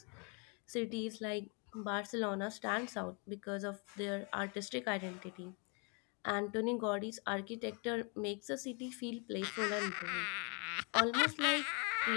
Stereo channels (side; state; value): right; quieter; 33.9 dB